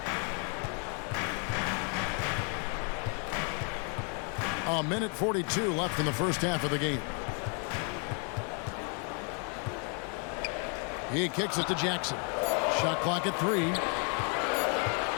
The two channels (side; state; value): right; quieter; 39.4 dB